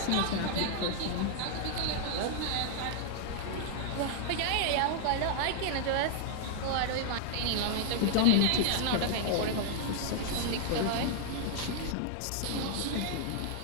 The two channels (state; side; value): different; both; correlation -0.01